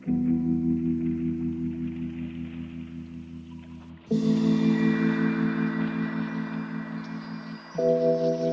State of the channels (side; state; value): both; identical; correlation 1.00